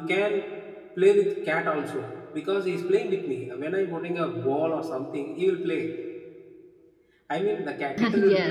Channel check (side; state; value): both; identical; correlation 1.00